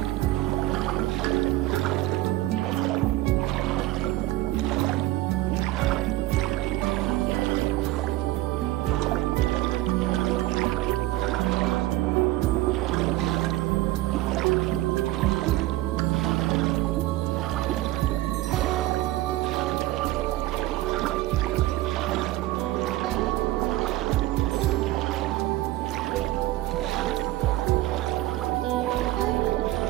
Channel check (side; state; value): left; quieter; 16.7 dB